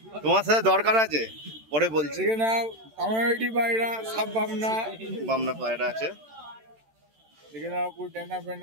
তোমার সাথে দরকার আছে, পরে বলছি। বামনা পায়রা আছে।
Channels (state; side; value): late; left; 13 ms